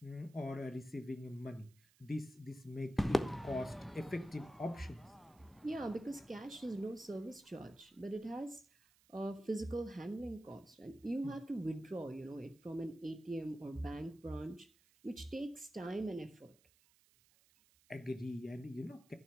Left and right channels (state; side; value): noise; right; hiss, 29 dB below the sound